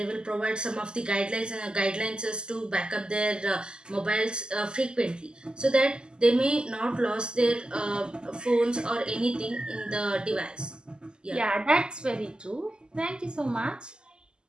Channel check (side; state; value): left; late; 0.047 ms